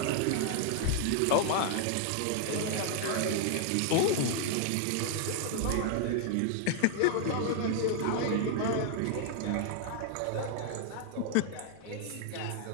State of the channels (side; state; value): both; different; correlation 0.00